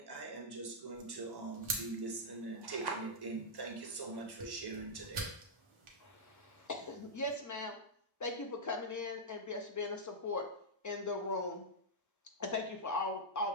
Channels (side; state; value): both; normal; correlation -0.08